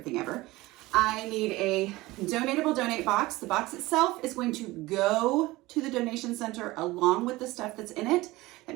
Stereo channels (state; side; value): quieter; left; 19.7 dB